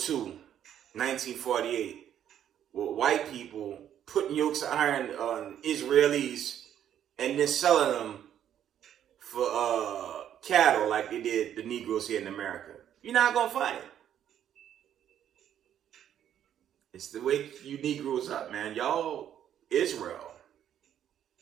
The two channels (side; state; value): left; quieter; 10.2 dB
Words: 1948, with white people putting yokes of iron on Israelis and then selling them for cattle like they did the Negroes here in America. You're not going to find it. It's the way you Negroes up, man. Y'all, Israel.